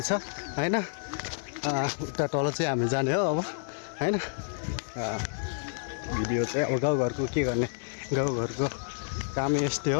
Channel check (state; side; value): silent; right; digital silence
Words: हैन। उता तल चाहिँ हामी जाने हो अब हैन। भिडियो चाहिँ अब गाउँघरको के गर्ने, गाउँघरको काम यस्तै हो।